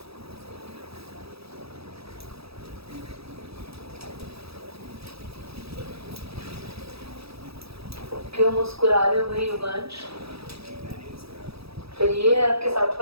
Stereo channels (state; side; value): late; left; 0.77 ms